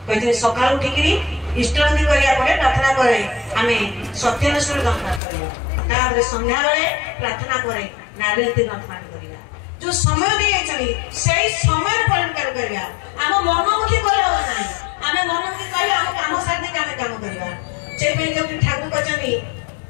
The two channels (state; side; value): drops out; right; at 5.2 s